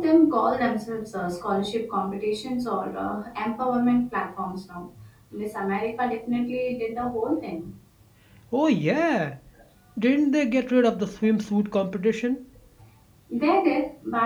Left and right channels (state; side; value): identical; both; correlation 1.00